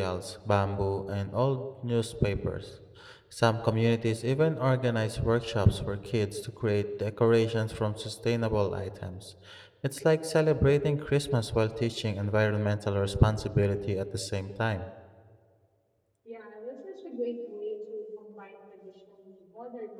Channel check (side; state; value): both; identical; correlation 1.00